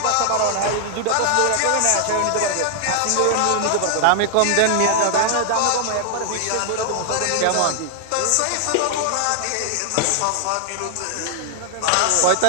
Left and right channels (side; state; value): both; different; correlation -0.01